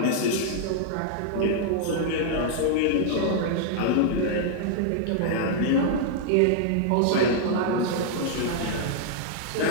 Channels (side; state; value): both; different; correlation -0.01